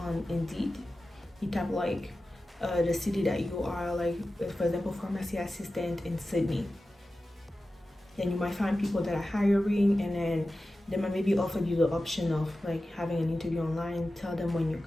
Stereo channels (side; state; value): both; normal; correlation 0.94